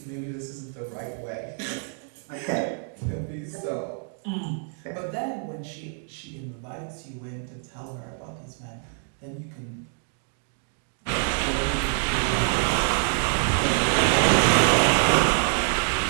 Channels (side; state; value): left; silent; 55 dB below the other